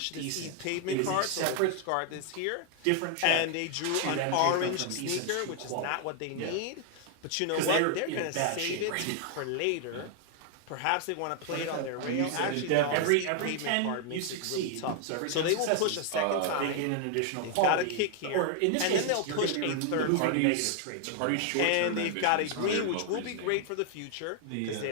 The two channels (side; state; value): both; different; correlation 0.00